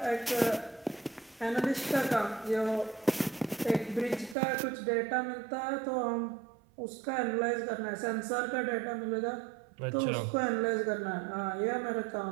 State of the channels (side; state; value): left; drops out; at 4.4 s